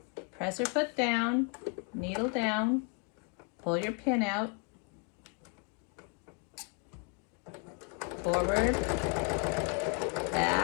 presser foot down, needle down, pull your pin out, forward,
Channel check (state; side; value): quieter; right; 34.9 dB